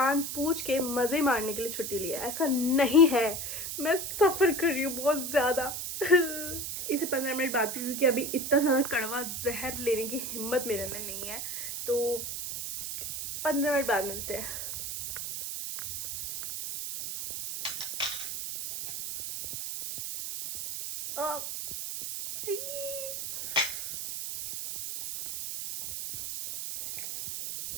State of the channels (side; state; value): right; noise; hiss, 5 dB below the sound